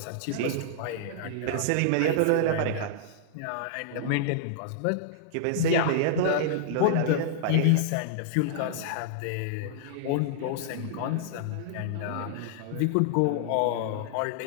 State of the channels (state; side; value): different; both; correlation -0.01